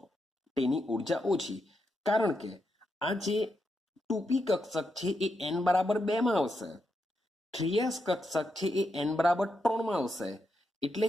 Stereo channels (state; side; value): normal; both; correlation 0.83